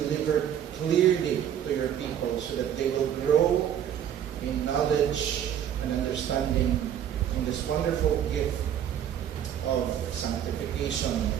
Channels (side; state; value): left; quieter; 9.8 dB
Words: clearly to your people so that they will grow in knowledge and understanding in this wonderful gift of sanctification